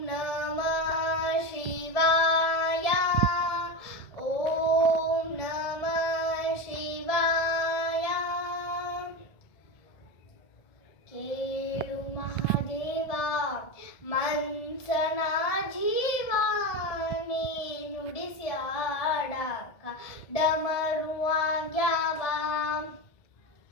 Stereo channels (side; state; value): right; late; 1.7 ms